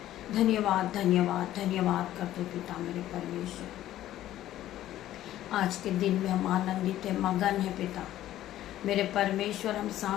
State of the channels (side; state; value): right; quieter; 13.4 dB